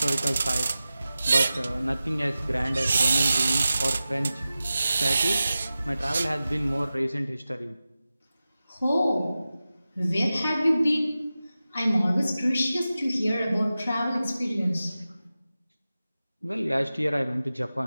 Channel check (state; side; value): inverted; both; correlation -0.95